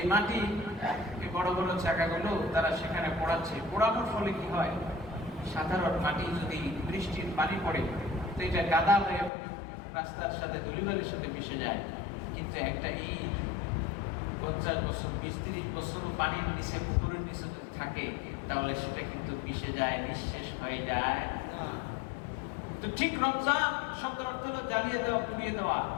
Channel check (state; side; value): drops out; right; at 9.3 s